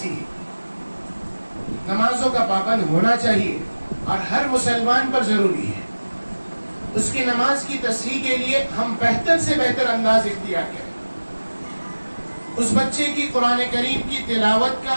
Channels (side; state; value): both; inverted; correlation -1.00